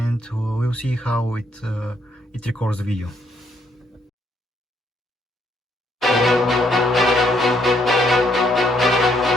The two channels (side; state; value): both; normal; correlation 0.72